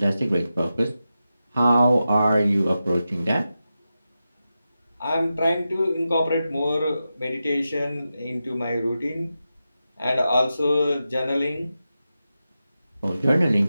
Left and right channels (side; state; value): both; inverted; correlation -0.91